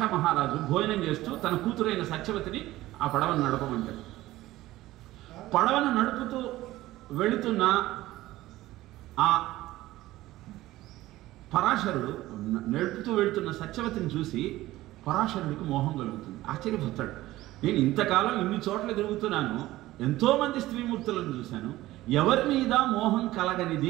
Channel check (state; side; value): quieter; left; 16.6 dB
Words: మహారాజు భోజనం చేస్తూ తన కూతురైన సత్యవతిని ఆ పడవను నడపమంటాడు. పడవను నడుపుతూ వెళుతున్న ఆ పరాశరుడు నడుపుతూ వెళుతున్న సత్యవతిని చూసి పరాశరుడికి మోహం కలుగుతుంది. ఆశ్చర్యపోతాడు. నేను ఇంతకాలం ఇన్ని చోట్ల తిరుగుతున్నాను, ఎంతోమంది స్త్రీమూర్తులను చూశాను, ఎవరి మీద మోహం